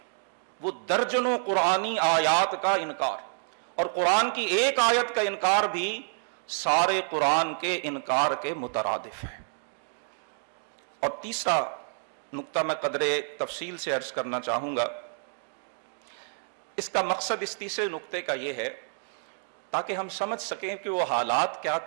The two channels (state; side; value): silent; left; digital silence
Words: وہ درجنوں قرآنی آیات کا انکار، اور قرآن کی ایک آیت کا انکار بھی سارے قرآن کے انکار کے مترادف ہے. اور تیسرا نقطہ میں قدرے تفصیل سے عرض کرنا چاہوں گا. اس کا مقصد اس تیسرے نقطے کا یہ ہے، تاکہ ہم سمجھ سکیں کہ وہ حالات کیا